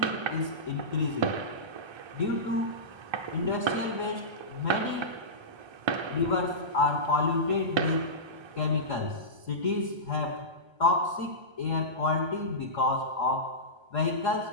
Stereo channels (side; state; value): left; late; 1.3 ms